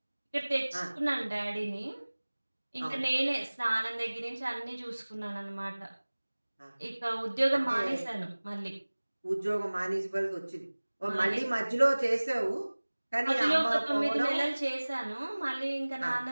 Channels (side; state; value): both; inverted; correlation -1.00